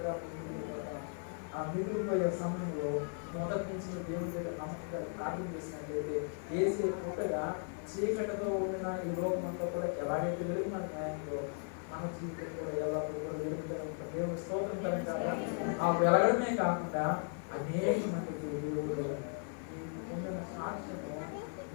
ఆ మిగిలిపోయే సమయంలో మొదటి నుంచి దేవుడి దగ్గర నమ్మకంగా ప్రార్థన చేసినట్లయితే ఏసే పుట్టగా చీకటితో ఉండిన ఈ లోకం అంతా కూడా ఎలాగైతే వెలుగు మన న్యాయంలో మన జీవితం కూడా ఎల్లప్పుడూ కూడా వెలుగుతూనే ఉంటుంది. దేవుడి స్తోత్రం కలగాలి. ఆ వెలగడమే కాకుండా అనేక మందికి దేవుడు నీకు పొందిన సాక్ష్యము,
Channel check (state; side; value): silent; right; 53 dB below the other